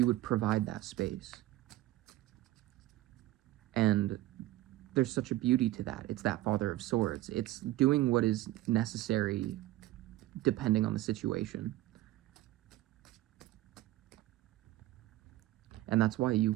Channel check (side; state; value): left; quieter; 15.8 dB